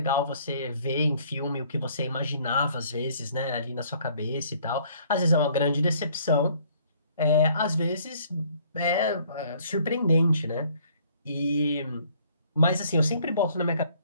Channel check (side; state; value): both; inverted; correlation -0.60